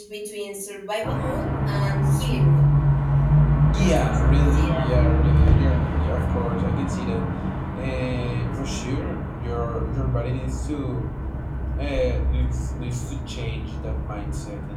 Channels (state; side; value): identical; both; correlation 1.00